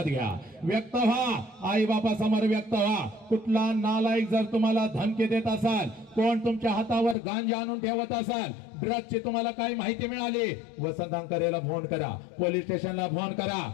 घ्या। व्यक्त व्हा, आई बापा समोर व्यक्त व्हा। कुठला नालायक जर तुम्हाला धमकी देत असाल, कोण तुमच्या हातावर गांजा आणून ठेवत असाल, ड्रग्जची तुम्हाला काही माहिती मिळाली, वसंत अंकरेला फोन करा, पोलीस स्टेशनला फोन करा।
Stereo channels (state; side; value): drops out; right; at 7.2 s